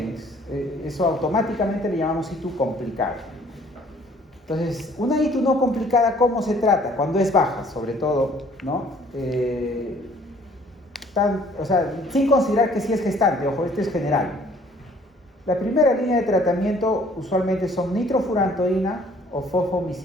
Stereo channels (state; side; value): normal; both; correlation 0.57